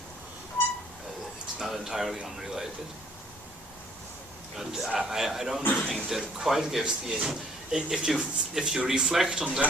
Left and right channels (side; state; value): both; normal; correlation 0.60